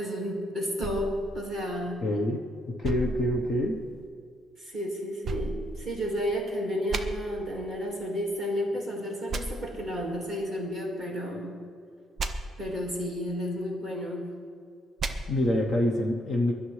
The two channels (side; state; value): both; normal; correlation 0.71